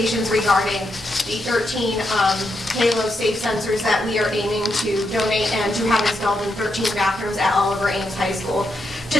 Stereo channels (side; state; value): both; normal; correlation 0.82